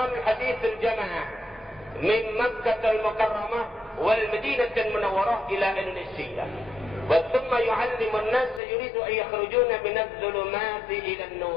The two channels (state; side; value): drops out; right; at 8.6 s